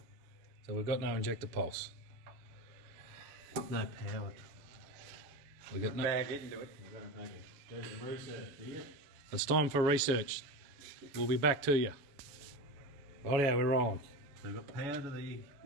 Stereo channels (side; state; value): left; late; 7.1 ms